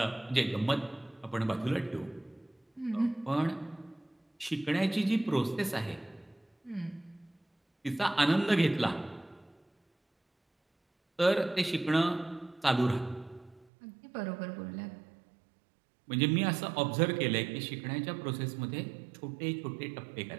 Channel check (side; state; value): left; drops out; at 13.7 s